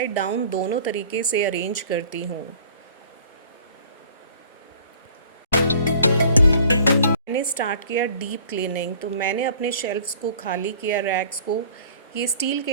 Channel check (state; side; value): inverted; both; correlation -0.51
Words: डाउन दोनों तरीके से अरेंज करती हूँ। मैंने स्टार्ट किया डीप क्लीनिंग, तो मैंने अपने शेल्फ्स को खाली किया, रैक्स को। ये स्टील